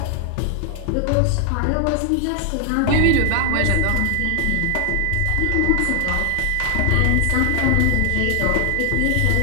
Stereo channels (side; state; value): both; different; correlation 0.00